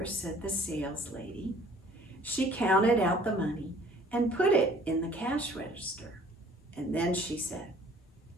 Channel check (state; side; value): normal; both; correlation 0.54